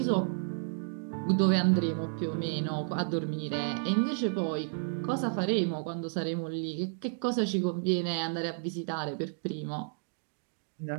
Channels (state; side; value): silent; left; digital silence